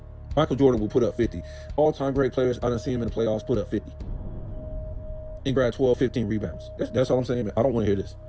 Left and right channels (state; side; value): identical; both; correlation 1.00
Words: Michael Jordan will put up 50. All-time great players, I done see him in the playoffs put up 50. And grab 12, 15 rebounds. That's all I'm saying. I don't want to hear this.